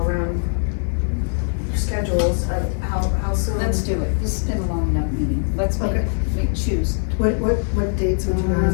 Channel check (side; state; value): right; silent; 65 dB below the other